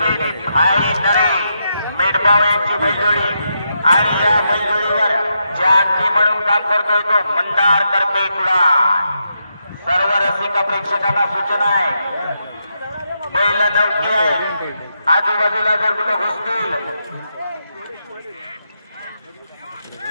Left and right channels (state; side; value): inverted; both; correlation -0.83